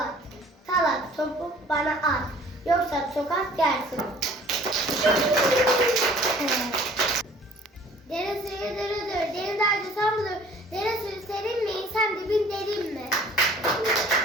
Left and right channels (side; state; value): both; normal; correlation 0.51